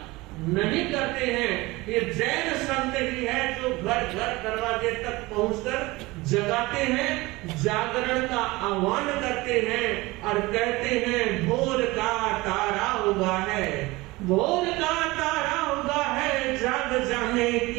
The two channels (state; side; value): quieter; left; 21.5 dB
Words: नहीं करते हैं। ये जैन संत ही है जो घर घर दरवाजे तक पहुंचकर जगाते हैं, जागरण का आह्वान करते हैं और कहते हैं भोर का तारा उगा है, भोर का तारा उगा है, जाग जाने